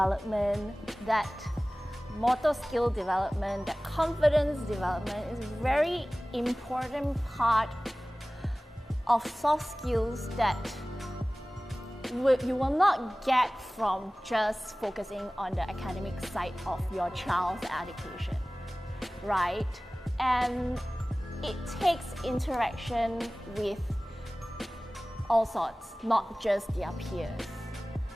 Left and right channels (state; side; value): normal; both; correlation 0.98